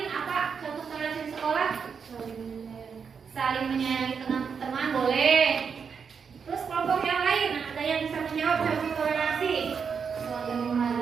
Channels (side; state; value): left; quieter; 6.3 dB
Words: apa contoh toleransi di sekolah? Saling menyayangi teman-teman boleh. Terus kelompok yang lain, ada yang bisa menjawab contoh toleransi? Saling